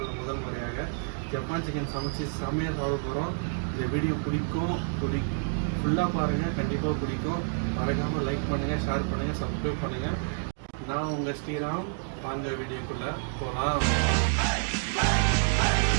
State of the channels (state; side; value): silent; left; digital silence